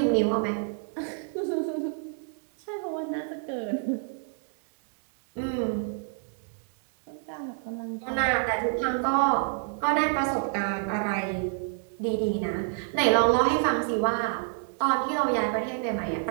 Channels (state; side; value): silent; left; 59 dB below the other